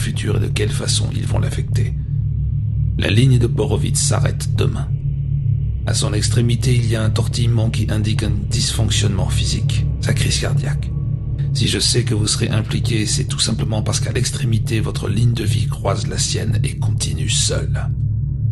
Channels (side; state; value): both; identical; correlation 1.00